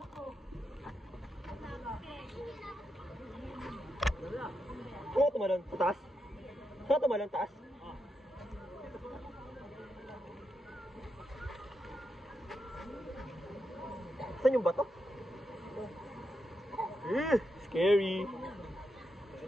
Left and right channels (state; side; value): normal; both; correlation 0.85